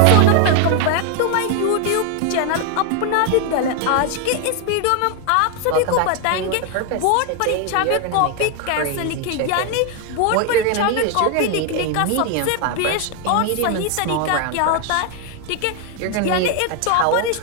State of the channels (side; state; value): both; different; correlation 0.01